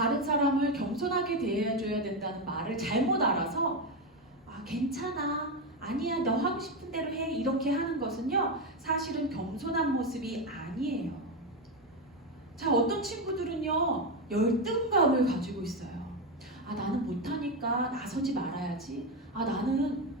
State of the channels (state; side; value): normal; both; correlation 0.11